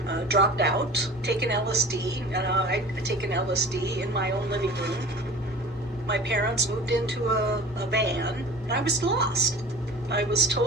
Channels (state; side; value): normal; both; correlation 0.40